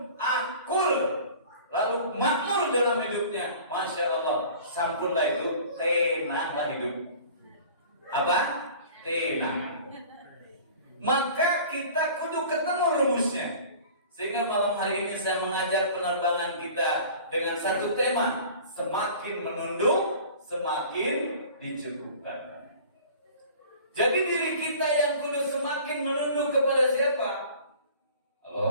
akul, lalu makmur dalam hidupnya. Masya Allah, sampunlah itu, tenanglah hidup. Apa? Tenang. Maka kita kudu ketemu rumusnya. Sehingga malam hari ini saya mengajak penerbangan kita dengan satu tema, semakin menunduk, semakin dicukupkan. Jadi diri kita yang kudu semakin menunduk kepada siapa?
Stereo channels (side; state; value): both; inverted; correlation -0.44